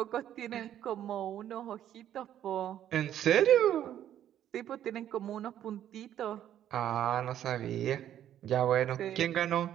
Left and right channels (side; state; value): left; quieter; 11.0 dB